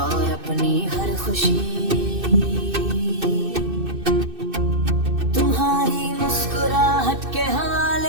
और अपनी हर खुशी तुम्हारी मुस्कुराहट के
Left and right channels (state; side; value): late; left; 2.6 ms